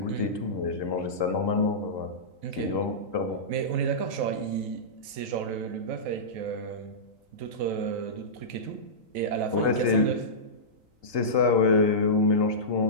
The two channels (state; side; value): late; left; 3.9 ms